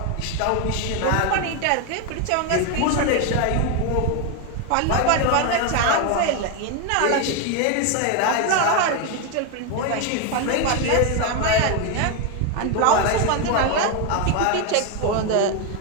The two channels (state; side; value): different; both; correlation 0.02